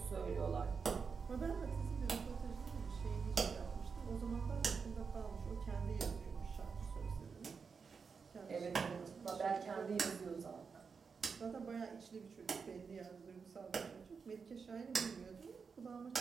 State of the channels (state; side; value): quieter; left; 5.5 dB